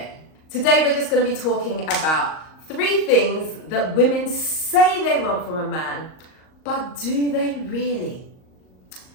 Today we're just going to be talking about 3 things that women say they want from a man, but do they really?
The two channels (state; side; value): late; right; 38 ms